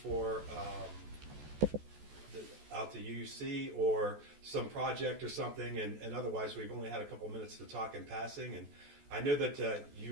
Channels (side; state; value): left; late; 14 ms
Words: out to UC or some project or something, and otherwise we've only had a couple minutes to talk in passing. And I know that